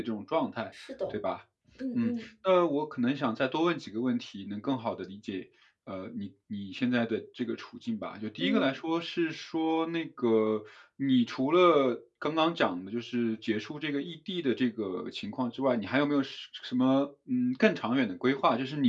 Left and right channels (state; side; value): identical; both; correlation 1.00